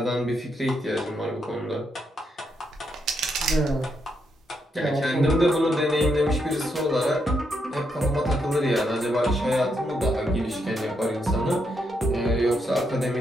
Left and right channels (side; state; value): both; normal; correlation 0.79